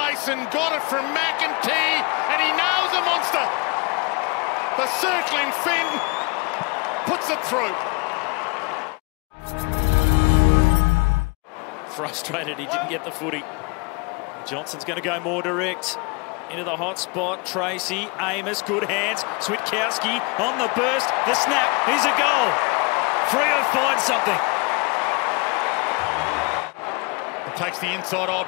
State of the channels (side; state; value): right; quieter; 28.8 dB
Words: got it from McEntee, and he nails the monster. The circling Finn puts it through. Frustrated he didn't get the footy. Johnson's going to go more direct. Into the hot spot. Tracy, Amos, good hands. Switkowski on the burst. The snap. Here's a goal. Freo finds something. Takes the inside